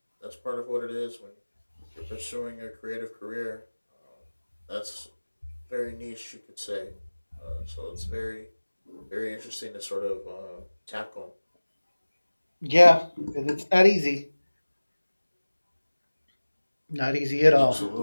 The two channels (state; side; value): inverted; both; correlation -1.00